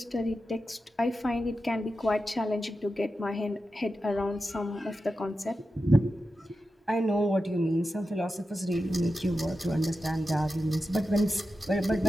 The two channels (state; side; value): normal; both; correlation 0.91